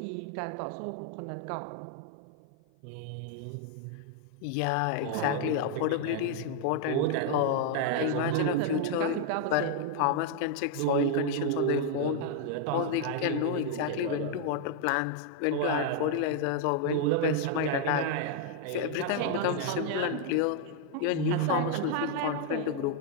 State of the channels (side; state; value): both; different; correlation 0.00